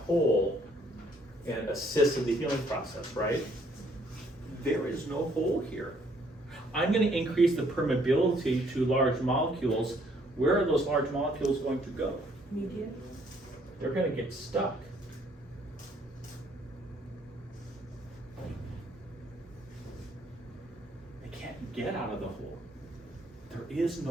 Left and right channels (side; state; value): both; normal; correlation 0.65